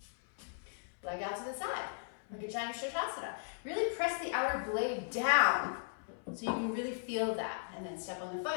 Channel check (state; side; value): silent; right; 53 dB below the other